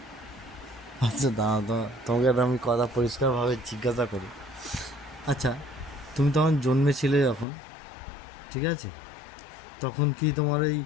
আচ্ছা দাঁড়াও তো, তোমাকে একটা আমি কথা পরিষ্কারভাবে জিজ্ঞাসা করি। আচ্ছা, তুমি তখন জন্মেছিলে যখন, ঠিক আছে, তখন কি তোমার এই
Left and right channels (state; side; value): drops out; right; at 7.5 s